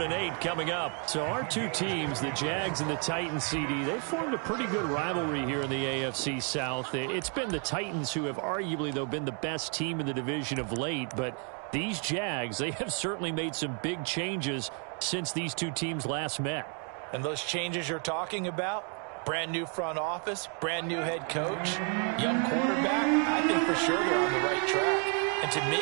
and 8 coming up. So our two teams, the Jags and the Titans, CD, they formed a pretty good rivalry here in the AFC South. It's been the Titans who have arguably, though, been the best team in the division of late, but these Jags, they have certainly made some big changes since these two teams last met. And those changes you're talking about? Brand new front office, brand new head coach, young quarterback. I think for sure they're on the right track. And to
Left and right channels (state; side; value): quieter; left; 39.9 dB